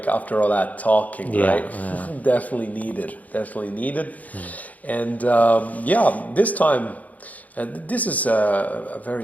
after all that talking, right? Definitely needed. And this time, this is a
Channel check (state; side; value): late; right; 0.075 ms